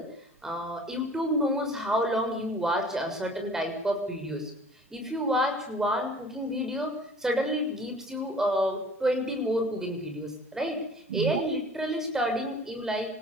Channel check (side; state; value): both; normal; correlation 0.47